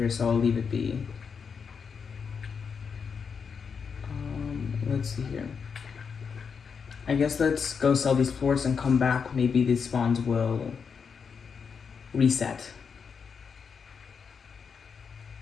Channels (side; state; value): right; quieter; 6.1 dB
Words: so I'll leave it be. Let's see here. I guess let's go sell these plorts and come back. Maybe these spawns will reset,